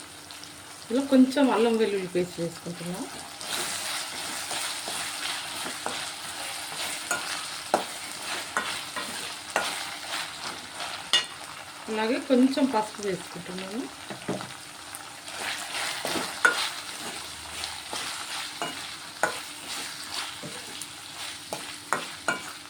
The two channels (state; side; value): identical; both; correlation 1.00